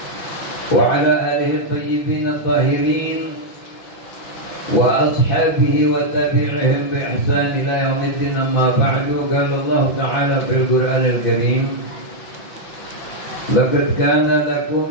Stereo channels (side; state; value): right; late; 6.0 ms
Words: وعلى آله الطيبين الطاهرين وأصحابه وتابعهم بإحسان إلى يوم الدين. أما بعد، قال الله تعالى في القرآن الكريم: لقد كان لكم